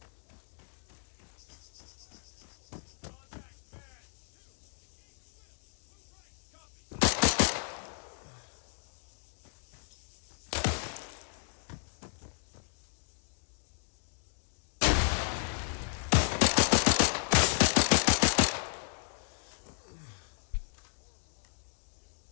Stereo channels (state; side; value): silent; right; digital silence